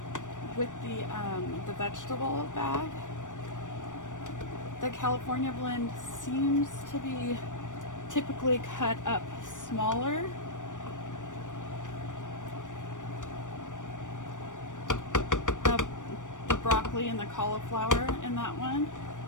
vegetable bag, the California blend seems to be typically cut up smaller. The broccoli and the cauliflower in that one.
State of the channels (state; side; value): late; right; 0.87 ms